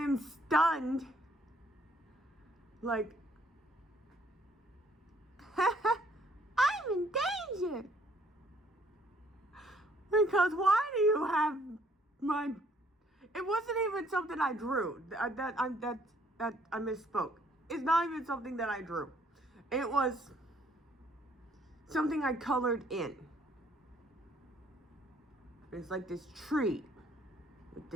stunned. Like, I'm in danger. Because why do you have my, it wasn't even something I drew. That I misspoke. It's not even something that I drew. It was something I colored in. It's like this tree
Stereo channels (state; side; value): normal; both; correlation 0.64